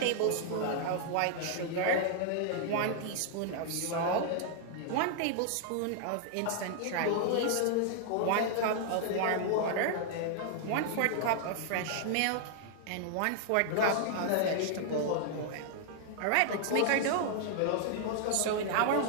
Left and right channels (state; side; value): different; both; correlation 0.00